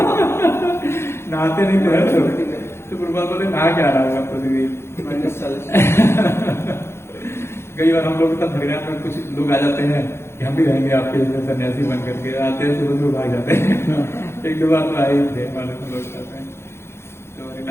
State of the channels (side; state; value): right; late; 0.12 ms